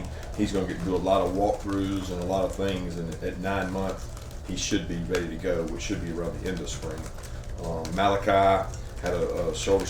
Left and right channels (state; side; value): identical; both; correlation 1.00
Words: He's going to get to do a lot of walkthroughs and a lot of things. And at 9 months, he should be ready to go, which should be around the end of spring. Malachi had a shoulder